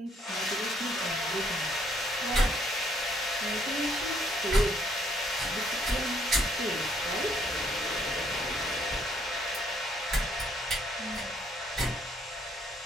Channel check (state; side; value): normal; both; correlation 0.68